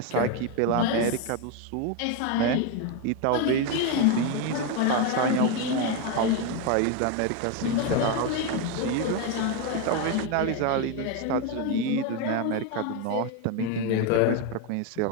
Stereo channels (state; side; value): different; both; correlation 0.02